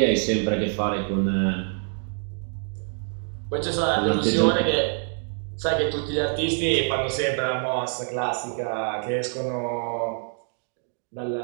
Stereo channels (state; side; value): silent; left; 58 dB below the other